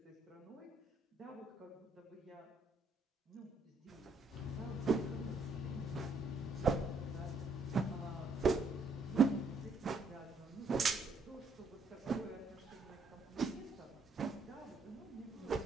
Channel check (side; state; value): left; quieter; 3.2 dB